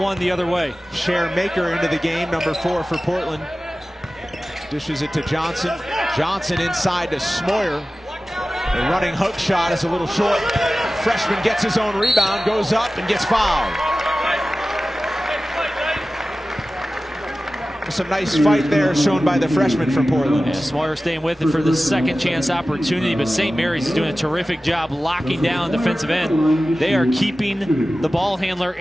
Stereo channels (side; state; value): both; normal; correlation 0.96